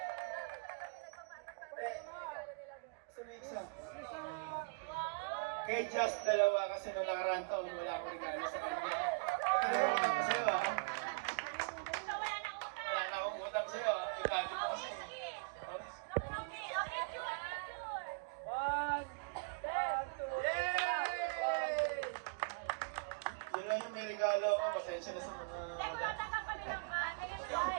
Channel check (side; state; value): left; quieter; 34.3 dB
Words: Isa. Kay Jess, dalawa kasi nung nakaraan taon wala akong regalo sa kanya. Ito na rin utang ko sa'yo ah. Wala na akong utang sa'yo ah. Itagi mo kasi. Yun lang yung may regalo ako. Pasensya na sa mga wala.